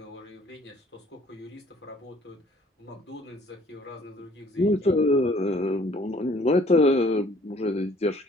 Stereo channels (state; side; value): normal; both; correlation 0.57